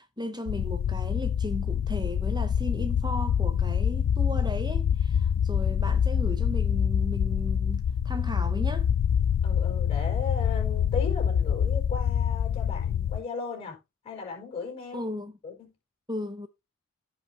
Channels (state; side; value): quieter; right; 7.0 dB